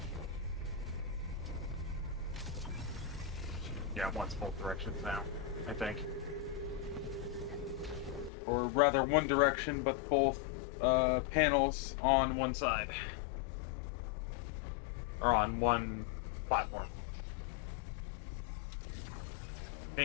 Yeah, it wants both directions now, I think. Or rather, one direction, but both panels on one side. Or on one platform.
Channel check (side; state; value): right; drops out; at 8.3 s